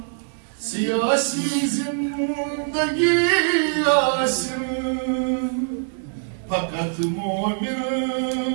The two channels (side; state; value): left; silent; digital silence